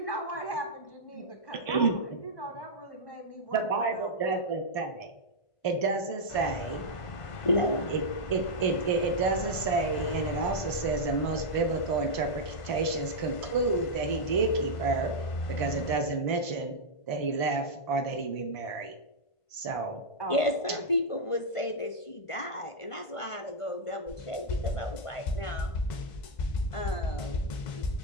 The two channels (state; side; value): late; right; 1.5 ms